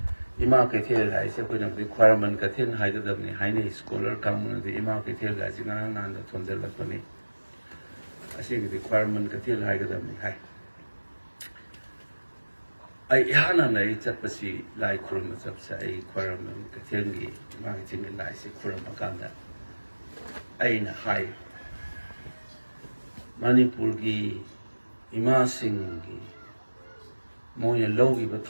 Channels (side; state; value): both; inverted; correlation -1.00